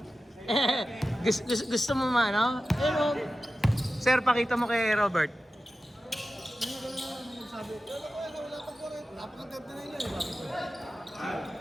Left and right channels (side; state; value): both; normal; correlation 0.94